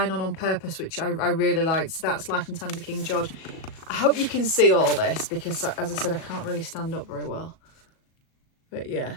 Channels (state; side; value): late; right; 37 ms